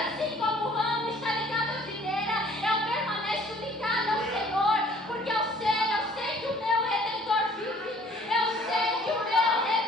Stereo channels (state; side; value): normal; both; correlation 0.56